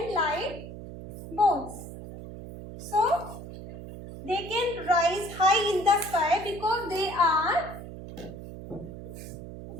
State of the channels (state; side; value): noise; right; hum, 11 dB below the sound